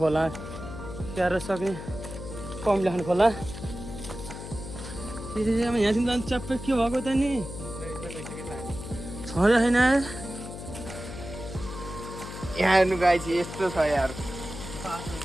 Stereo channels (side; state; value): left; noise; hum, 10 dB below the sound